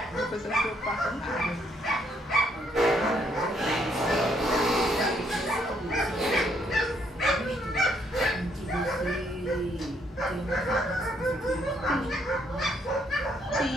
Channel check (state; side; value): normal; both; correlation 0.71